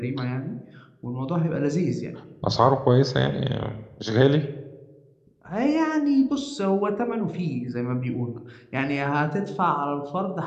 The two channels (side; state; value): both; identical; correlation 1.00